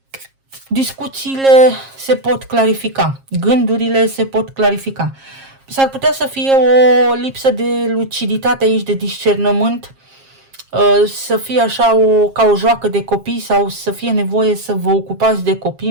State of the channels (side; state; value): left; late; 7.4 ms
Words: discuțiile se pot clarifica, gândurile se pot clarifica. S-ar putea să fie o lipsă de luciditate aici, de discernământ, să fie așa ca o joacă de copii sau să fie nevoie să vă ocupați de copii